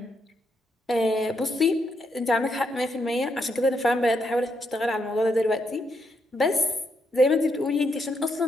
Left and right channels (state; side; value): normal; both; correlation 0.79